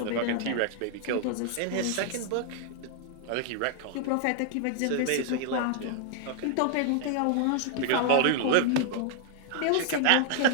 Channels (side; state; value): both; different; correlation 0.00